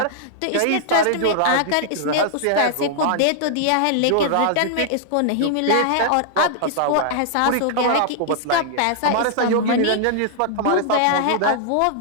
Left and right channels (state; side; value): different; both; correlation -0.01